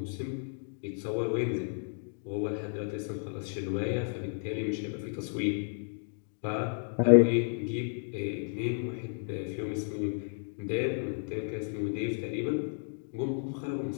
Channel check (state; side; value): silent; right; digital silence